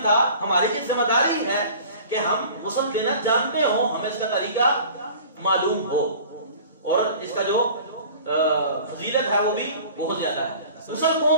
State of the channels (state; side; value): inverted; both; correlation -0.44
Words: تھا، ہماری یہ ذمہ داری ہے کہ ہم غسل دینا جانتے ہوں، ہمیں اس کا طریقہ معلوم ہو اور اس کا جو فضیلت ہے وہ بھی بہت زیادہ ہے. غسل